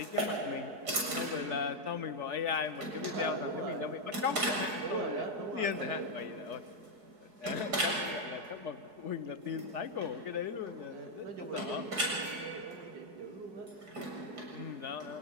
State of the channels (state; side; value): late; left; 4.7 ms